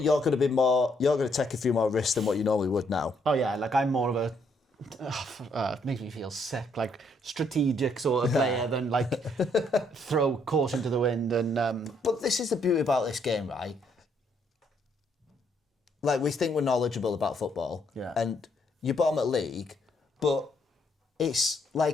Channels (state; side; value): normal; both; correlation 0.71